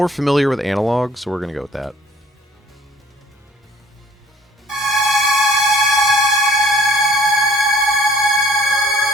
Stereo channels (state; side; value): normal; both; correlation 0.56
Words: familiar with analog, so we're gonna go with that.